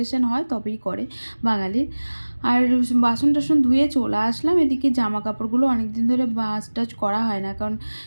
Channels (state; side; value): inverted; both; correlation -1.00